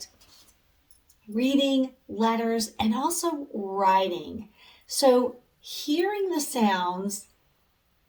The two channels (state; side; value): identical; both; correlation 1.00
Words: reading, letters, and also writing. So hearing the sounds